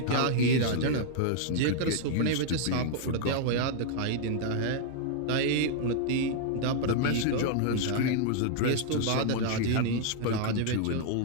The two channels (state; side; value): different; both; correlation -0.01